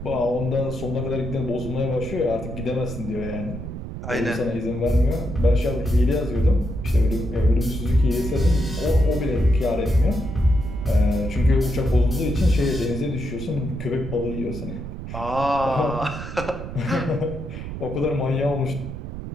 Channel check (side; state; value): right; noise; rumble, 8 dB below the sound